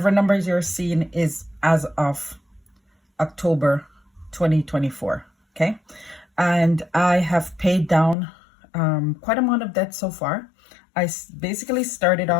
numbers you're seeing is as of October 2024. Okay. And I have paid down quite amount of debt so far. I basically started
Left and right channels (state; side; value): drops out; right; at 8.2 s